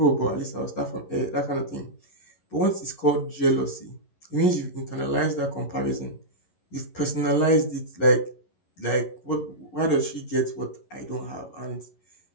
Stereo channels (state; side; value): late; right; 11 ms